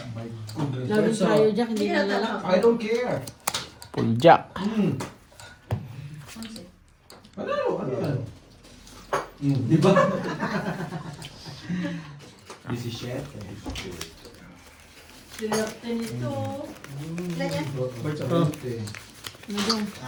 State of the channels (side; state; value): both; identical; correlation 1.00